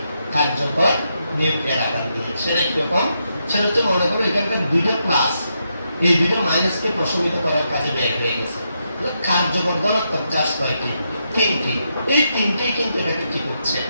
কার্যকর নিউক্লিয়ার আধান দিয়ে। সেটা কিরকম? সেটা হচ্ছে মনে করো এখানকার 2টা প্লাস এই 2টা মাইনাসকে প্রশমিত করার কাজে ব্যয় হয়ে গেছে। কার্যকর ধনাত্মক চার্জ কয়টি? 3টি। এই 3টেই কিন্তু এটাকে কি করছে?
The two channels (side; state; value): both; inverted; correlation -0.82